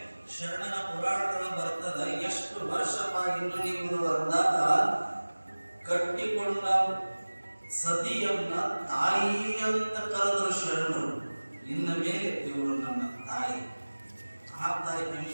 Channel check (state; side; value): inverted; both; correlation -1.00